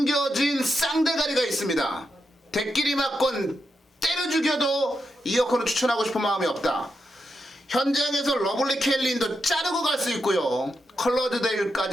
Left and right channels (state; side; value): normal; both; correlation 0.85